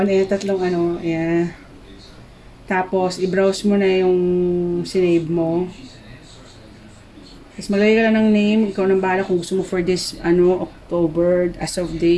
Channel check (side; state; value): both; identical; correlation 1.00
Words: tatlong ayan. Tapos i-browse mo na yung sinave mo. Tapos maglagay ka lang ng name, ikaw nang bahala kung gusto mo for this, October, as of